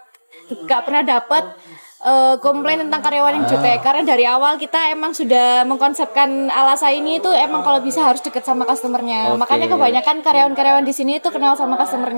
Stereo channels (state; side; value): inverted; both; correlation -1.00